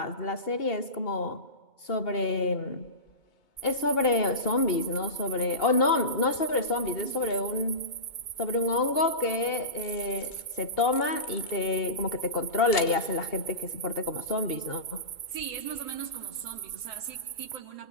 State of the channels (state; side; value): late; right; 2.2 ms